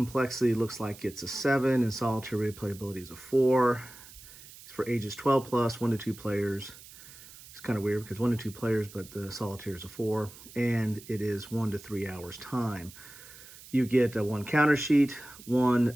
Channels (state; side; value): noise; right; hiss, 19 dB below the sound